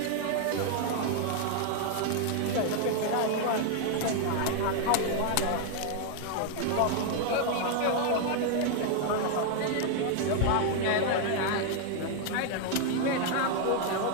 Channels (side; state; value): both; different; correlation 0.00